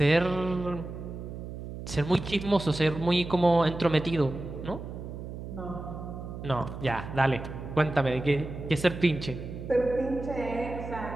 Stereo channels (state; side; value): noise; right; hum, 9 dB below the sound